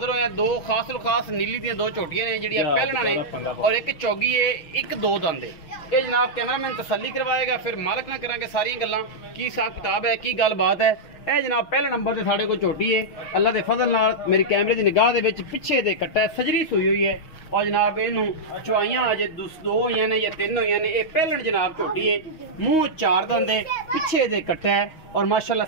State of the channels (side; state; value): right; late; 6.3 ms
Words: होए दो खास नीली दी दो झोटियां ने जिहड़ियां पहलना ने और एक चौगी है, एक दो दंद है। ये जनाब कैमरामैन तसल्ली करवाएगा, फिर मालक ना करांगे सारी गल्लां की हिसाब किताब है की गलबात है। ਇਹ जनाब पहले नंबर से साढ़े को झोटी है, अल्लाह के फजल नाल मेरी कैमरे की निगाह के पिछे दे कट्टा सजरी सूई हुई है और जनाब इनू चुआइयां अजे दो हुई ने या तीन हुई ने। पहलन जनाब झोटी है, मूँह चार दंद है, पिछे दे कट्टा है और माशाल्लाह